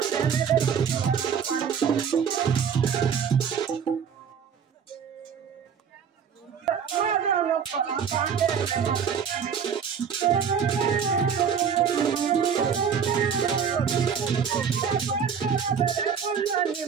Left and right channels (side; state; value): left; quieter; 7.1 dB